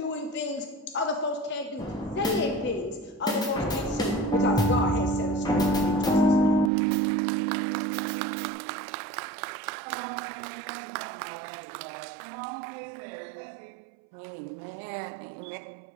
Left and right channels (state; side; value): drops out; left; at 6.7 s